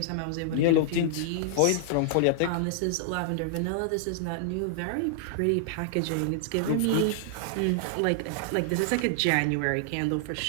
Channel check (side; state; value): both; different; correlation -0.01